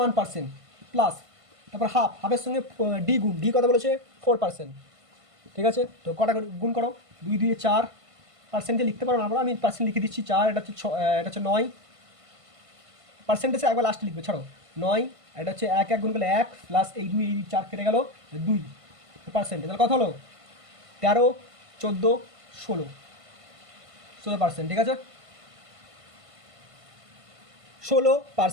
1%, প্লাস। তারপর হাফের সঙ্গে ডি গুণ, ডি কত বলেছে 4%, ঠিক আছে। তো কটা গুণ করো, 2 2 4%, লিখতে পারো না, আমরা আমি পার্সেন্ট লিখে দিচ্ছি 4, এটা হচ্ছে এটা হচ্ছে 9, পার্সেন্টেজে একবার লাস্টে লিখবে, ছাড়ো 9, এটা হচ্ছে 1 গুণ করলে 1, প্লাস এই 2 এই 4 কেটে গেল 2%, তাহলে কত হলো 13, 14, 16%, ঠিক আছে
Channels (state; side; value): late; left; 1.5 ms